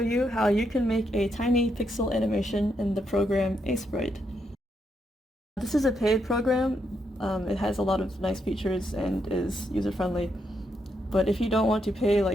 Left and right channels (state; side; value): normal; both; correlation 0.79